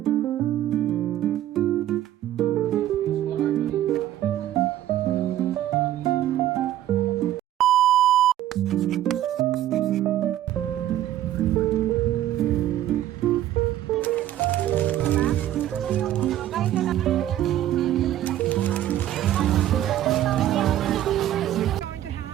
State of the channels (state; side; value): quieter; left; 12.8 dB